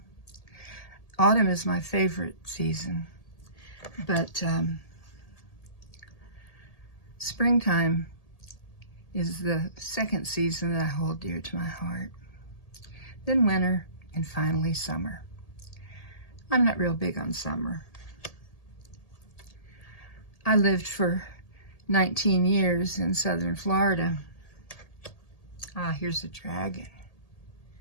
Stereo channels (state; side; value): late; right; 1.8 ms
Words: Autumn is my favorite season, but springtime is the second season that I hold dear to my heart. Then winter, and finally summer. I'm not real big on summer. I lived for 19 years in southern Florida. Ah, here's a dragon.